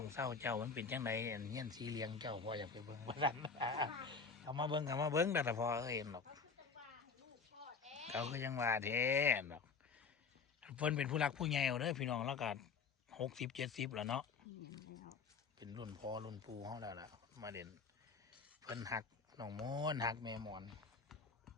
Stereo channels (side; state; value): right; quieter; 5.2 dB